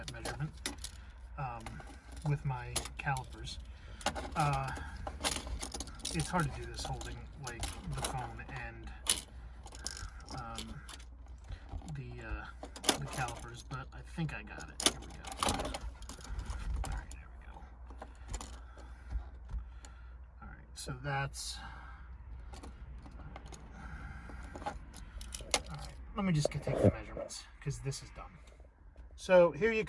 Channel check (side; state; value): both; identical; correlation 1.00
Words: measurement with my calipers. It's hard to do this holding like the phone and the calipers, but I think I got it. Here we go. All right, there we go. All right, so that's. Let me just take the measurements because this is done. So here you